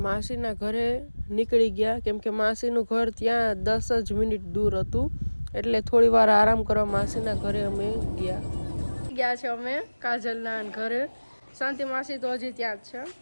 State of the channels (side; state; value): both; inverted; correlation -1.00